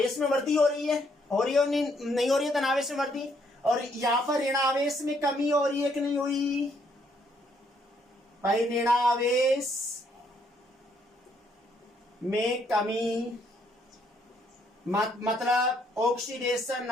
में वृद्धि हो रही है, हो रही है नहीं हो रही है धनावेश में वृद्धि? और यहां पर ऋणावेश में कमी हो रही है कि नहीं हुई भाई? ऋणावेश में कमी मतलब ऑक्सीडेशन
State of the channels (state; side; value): normal; both; correlation 0.70